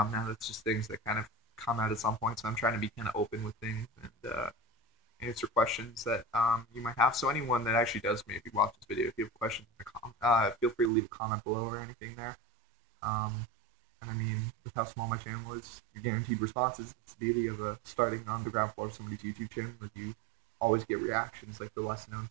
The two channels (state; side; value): drops out; left; at 10.9 s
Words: now, that's just things that kind of come out at some point. So I'm trying to be kind of open with things and answer questions that you might have. So anyone that actually does maybe watch this video, if you have questions in the feel free to leave a comment below or anything there. And I mean, with how small my channel is, you're guaranteed responses. It's the beauty of starting on the ground floor of somebody's YouTube channel, is you always get reactions. Like, the less known